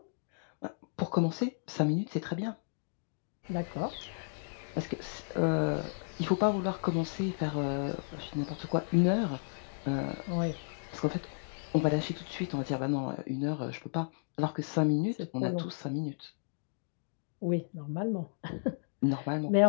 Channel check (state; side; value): silent; right; digital silence